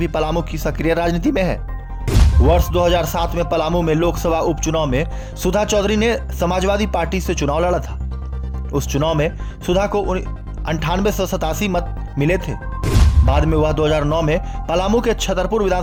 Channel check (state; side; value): identical; both; correlation 1.00